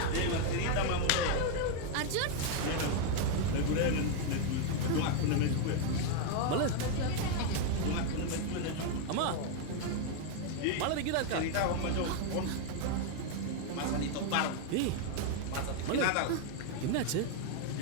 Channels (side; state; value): both; different; correlation 0.01